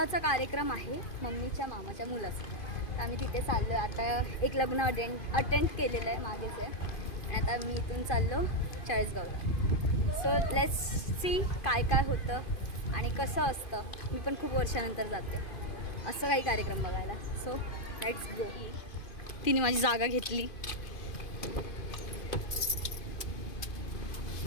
कार्यक्रम आहे मम्मीच्या मामाच्या मुलाचा. तर आम्ही तिथे चाललो आहे. आता एक लग्न अटेंड केलेलं आहे मागेच आहे, आणि आता मी इथून चाललो चाळीसगावला. सो लेट्स सी काय काय होतं आणि कसं असतं. मी पण खूप वर्षानंतर जाते असं काही कार्यक्रम बघायला. So let's go. तिने माझी जागा घेतली.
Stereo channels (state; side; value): late; right; 2.5 ms